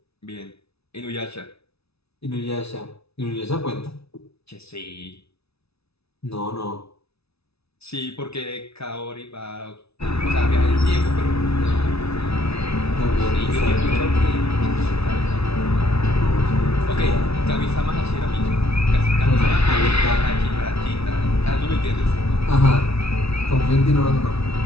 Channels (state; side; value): late; right; 0.79 ms